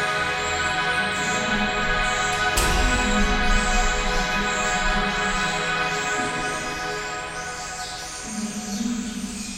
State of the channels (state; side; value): identical; both; correlation 1.00